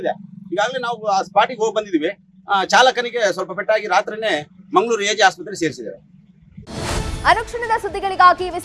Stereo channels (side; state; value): both; identical; correlation 1.00